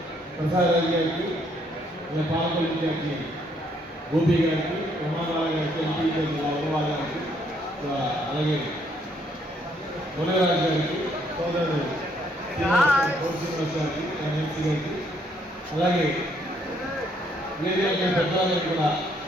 ప్రసాద్ రాజు గారికి, పాలకొల్లు ఇన్ఛార్జి గోపి గారికి, ప్రమాదాల గారికి, ఎంపీ అగర్వాల్ గారికి, అలాగే మునగరాజు గారికి, సోదరుడు శ్రీనివాస్ గారికి, ఎంపీ గారికి, అలాగే పెద్దవాళ్ళకి కూడా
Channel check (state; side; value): normal; both; correlation 0.69